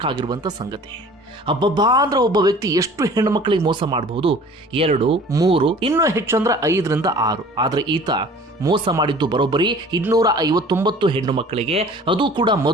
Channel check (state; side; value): normal; both; correlation 0.47